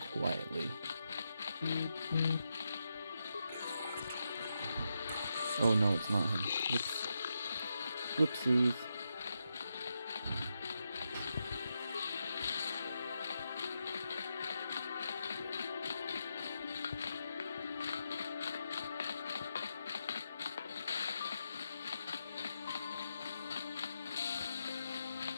quietly. Oh no, it's not him. Whoops. Whoopsies.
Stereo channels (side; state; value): both; inverted; correlation -0.85